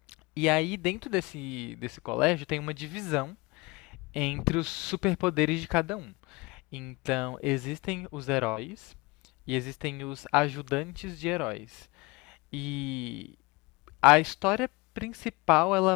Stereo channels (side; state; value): right; quieter; 24.5 dB